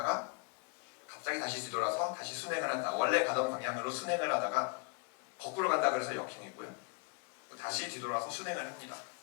갑자기 다시 뒤돌아서 다시 순행을 한다. 원래 가던 방향으로 순행을 하다가 거꾸로 간다 그래서 역행이고요. 다시 뒤돌아서 순행을 합니다.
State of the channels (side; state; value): right; quieter; 34.0 dB